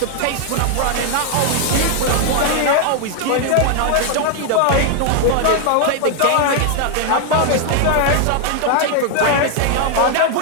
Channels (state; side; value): different; both; correlation 0.00